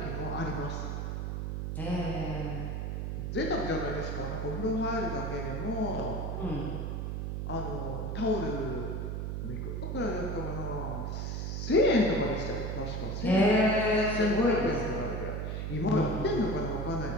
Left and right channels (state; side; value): noise; right; hum, 3 dB below the sound